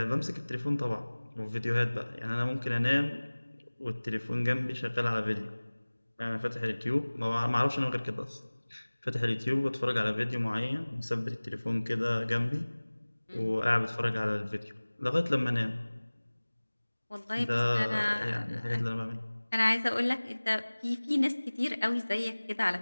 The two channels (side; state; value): both; inverted; correlation -1.00